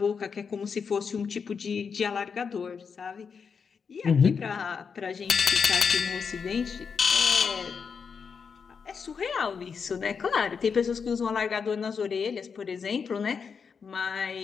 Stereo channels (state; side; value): quieter; right; 6.0 dB